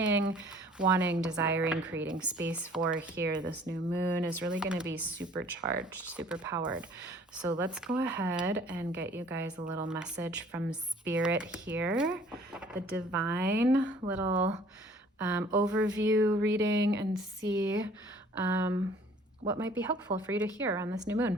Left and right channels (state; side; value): normal; both; correlation 0.54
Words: wanting, desiring, creating space for here, this new moon is really going to be supercharged, super powered. So let's go ahead and get you guys a little message from Spirit here, the divine little overview reading, and see what might be helpful for you to hear on this new moon.